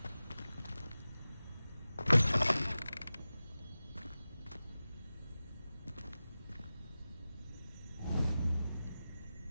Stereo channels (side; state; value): both; inverted; correlation -0.95